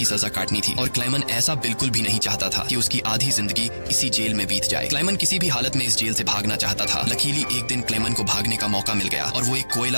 सजा काटनी थी और क्लेमन ऐसा बिल्कुल भी नहीं चाहता था कि उसकी आधी जिंदगी इसी जेल में बीत जाए। क्लेमन किसी भी हालत में इस जेल से भागना चाहता था। लकीली एक दिन क्लेमन को भागने का मौका मिल गया और वो एक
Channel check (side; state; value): both; inverted; correlation -1.00